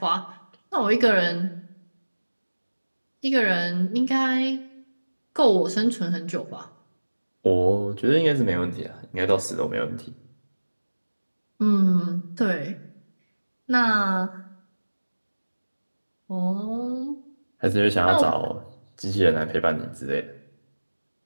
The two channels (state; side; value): inverted; both; correlation -1.00